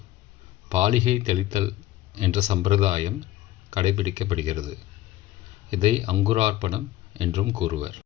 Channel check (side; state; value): right; quieter; 15.2 dB